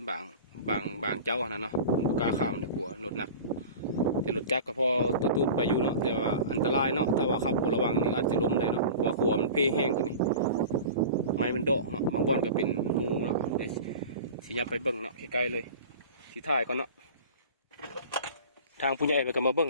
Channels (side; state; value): both; inverted; correlation -0.36